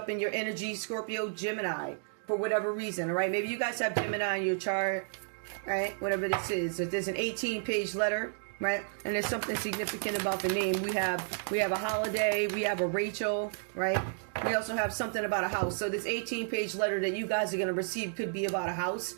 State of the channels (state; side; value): silent; left; digital silence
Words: in your energy, Scorpio, Gemini, for whatever reason, all right? Maybe you guys have Gemini in your chart, all right? Whatever this is. If there's an 18-page letter, right, and there's something significant about the name. We have a holiday, we have a Rachel, right? We also have something about a house. So this 18-page letter that you guys are going to receive could be about a